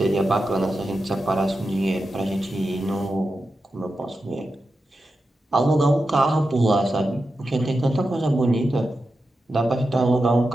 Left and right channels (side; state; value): both; normal; correlation 0.90